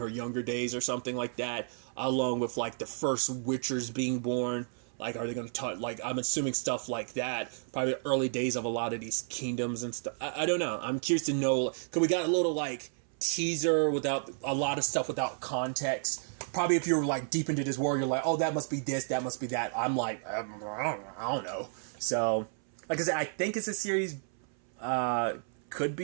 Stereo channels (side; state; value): left; silent; 57 dB below the other